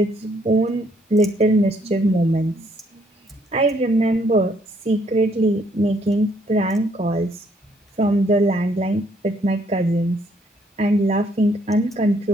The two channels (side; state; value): both; normal; correlation 0.68